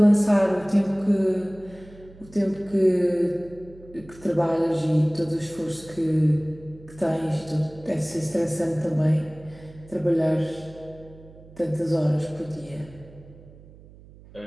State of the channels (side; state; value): right; noise; hum, 21 dB below the sound